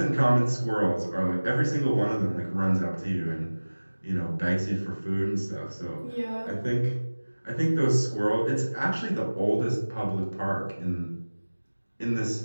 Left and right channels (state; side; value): inverted; both; correlation -1.00